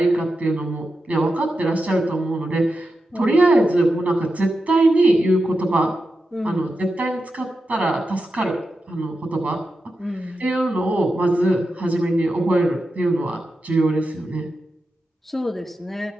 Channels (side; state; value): both; normal; correlation 0.89